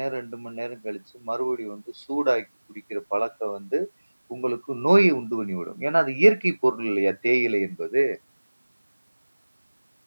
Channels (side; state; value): both; inverted; correlation -1.00